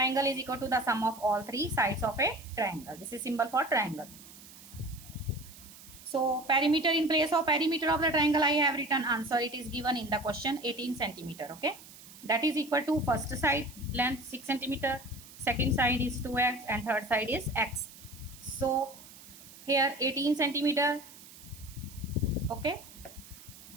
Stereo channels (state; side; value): noise; right; hiss, 19 dB below the sound